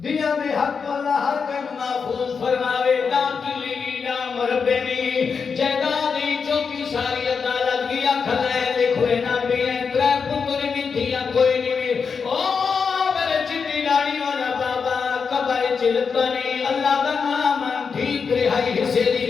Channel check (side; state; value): right; quieter; 5.7 dB